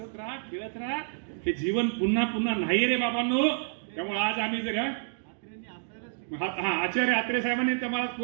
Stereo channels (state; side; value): silent; left; digital silence